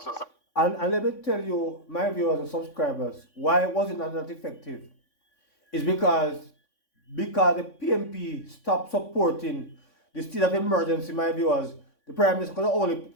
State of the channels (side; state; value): right; late; 3.6 ms